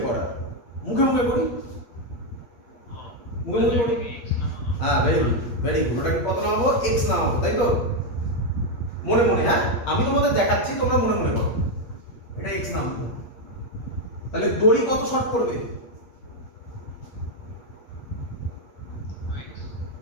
করা। মুখে মুখে করি, মুখে মুখে করি। হ্যাঁ ভেরি গুড, ভেরি গুড। ওটাকে কত নামাবো? এক্স নামাবো, তাই তো? মনে মনে, হ্যাঁ আমি তোমাদের দেখাচ্ছি, তোমরা মনে মনে করো। এটা এক্স নামাবো, তাহলে দড়ি কত শর্ট করবে?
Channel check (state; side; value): late; right; 8.6 ms